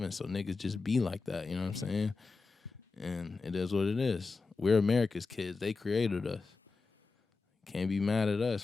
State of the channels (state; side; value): quieter; right; 4.2 dB